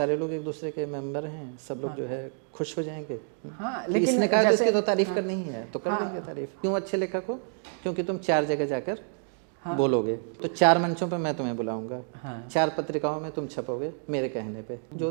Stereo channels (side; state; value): left; silent; 59 dB below the other